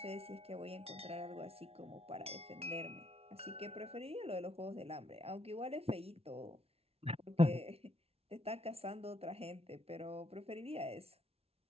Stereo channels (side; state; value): left; late; 0.30 ms